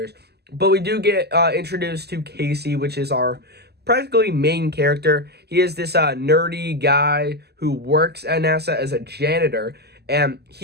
but we do get introduced to Casey, which is our practically main character. He is this nerdy guy who works at NASA as a janitor, and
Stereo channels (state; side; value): late; left; 0.47 ms